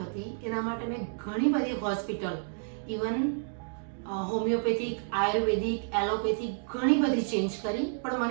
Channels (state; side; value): silent; left; digital silence